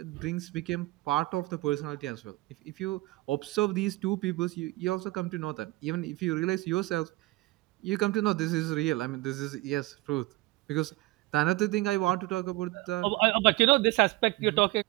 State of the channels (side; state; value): left; quieter; 20.3 dB